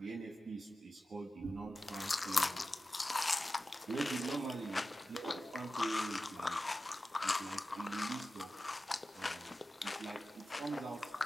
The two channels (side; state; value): both; normal; correlation 0.94